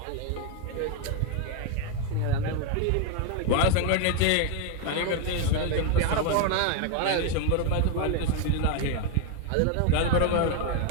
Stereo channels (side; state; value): both; different; correlation 0.01